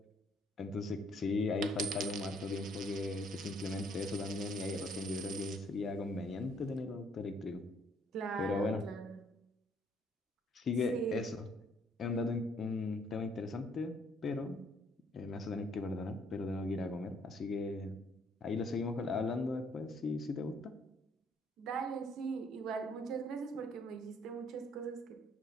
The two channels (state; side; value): normal; both; correlation 0.64